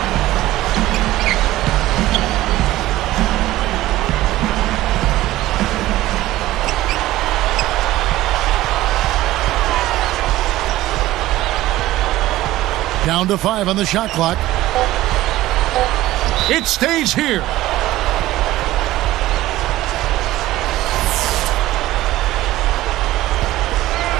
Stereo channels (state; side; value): quieter; left; 16.0 dB